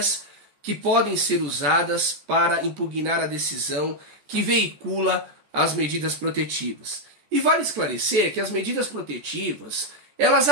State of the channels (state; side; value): late; left; 14 ms